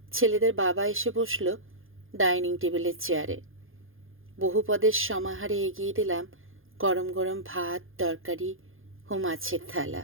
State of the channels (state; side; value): late; left; 0.59 ms